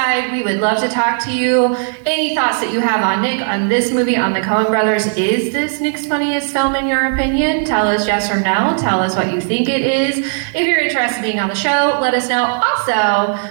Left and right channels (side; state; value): left; silent; digital silence